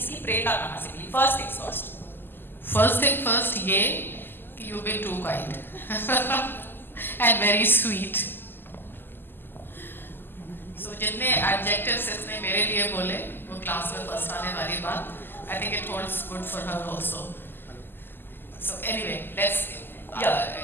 प्रेरणा कहाँ से मिली? फर्स्ट थिंग फर्स्ट, ये कि you been too kind and very sweet. So जितने एडजेक्टिव्स इसने मेरे लिए बोले वो क्लास में फर्स्ट आने वाली बात, I think it holds good for her also. So anyway, let's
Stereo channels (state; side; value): late; right; 0.096 ms